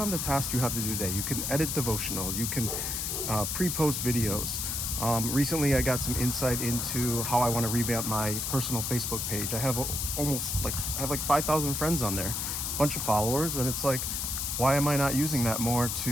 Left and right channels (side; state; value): left; noise; hiss, 2 dB below the sound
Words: the tasks you have to do today. You can edit devotionals. You can pre-post videos. Recently, I got some insight into how I want to revamp my personal Facebook page. I have like 5,000 friends on there, a bunch of followers, and it's like, why am I not using that more